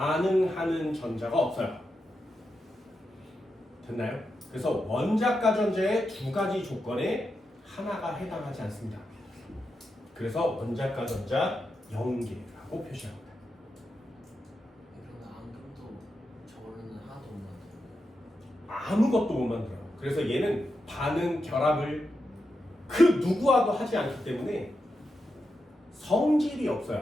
전자가 없어요. 됐나요? 그래서 원자과 전자의 두 가지 조건에 하나가 해당하지 않습니다. 그래서 원자과 전자 0개라고 표시합니다. 그러면 안금도 저걸로는 하나도 못 만들어요. 아무것도 못 만들어요. 그래서 얘는 반응, 결합을 그 누구와도 하지 않기 때문에 성질이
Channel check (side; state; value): both; normal; correlation 0.87